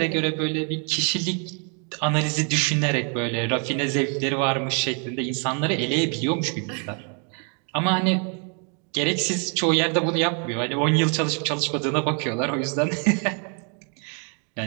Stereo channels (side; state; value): left; quieter; 38.6 dB